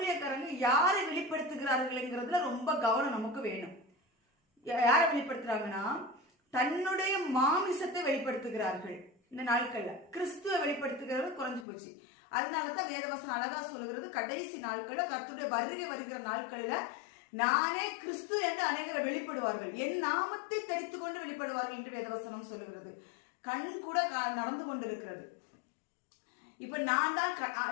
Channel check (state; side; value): drops out; right; at 11.7 s